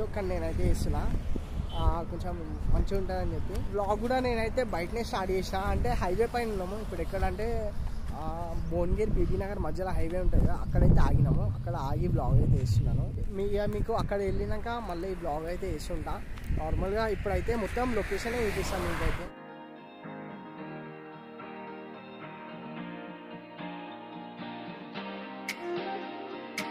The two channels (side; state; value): both; identical; correlation 1.00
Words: కానీ నేనైతే వేస్తున్నా, కొంచెం మంచిగా ఉంటుందని చెప్పి. బ్లాగ్ కూడా నేనైతే బయటనే స్టార్ట్ చేసిన. అంటే హైవే పైన ఉన్నాము ఇప్పుడు. ఎక్కడంటే భువనగిరి బీబీ నగర్ మధ్యలో హైవే ఉంటుంది కదా, అక్కడైతే ఆగినాము. అక్కడ ఆగి బ్లాగ్ అయితే వేస్తున్నాను. మీకు అక్కడ వెళ్ళినాక మళ్ళీ ఈ బ్లాగ్ అయితే వేస్తుంటా. నార్మల్గా ఇప్పుడైతే మొత్తం లొకేషన్ చూపిస్తాను మీకైతే.